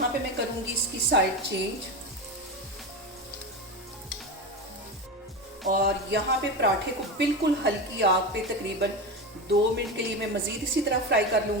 पे मैं करूँगी इसकी साइड चेंज, और यहाँ पे पराठे को बिल्कुल हल्की आग पे तकरीबन 2 मिनट के लिए मैं मज़ीद इसी तरह फ्राई कर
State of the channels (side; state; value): both; normal; correlation 0.21